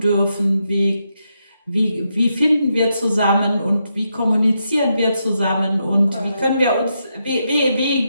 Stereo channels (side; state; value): both; inverted; correlation -0.82